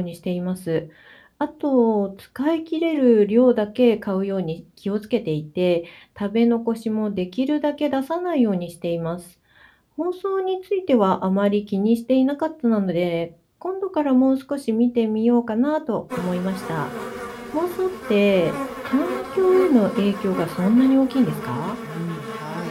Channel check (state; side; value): identical; both; correlation 1.00